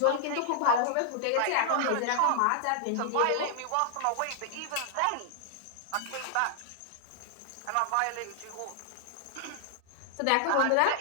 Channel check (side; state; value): both; different; correlation -0.01